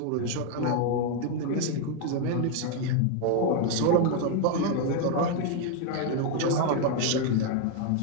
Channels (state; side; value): different; both; correlation 0.00